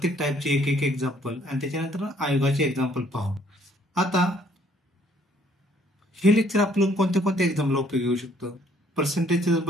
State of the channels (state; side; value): normal; both; correlation 0.63